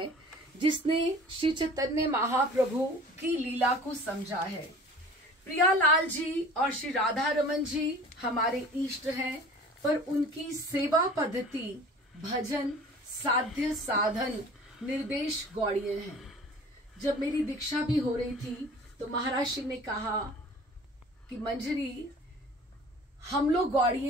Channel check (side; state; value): both; normal; correlation 0.44